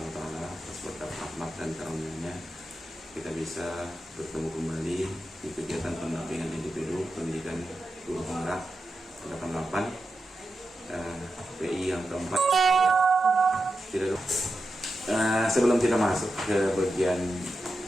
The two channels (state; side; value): normal; both; correlation 0.90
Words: wa taala atas berkat rahmat dan karunia-Nya kita bisa bertemu kembali di kegiatan pendampingan individu pendidikan guru penggerak 88 PI yang keempat. Sebelum kita masuk ke bagian